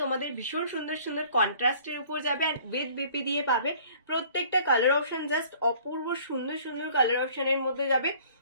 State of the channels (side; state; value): both; inverted; correlation -0.53